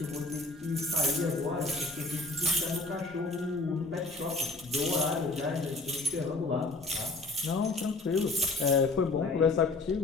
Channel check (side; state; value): right; quieter; 3.1 dB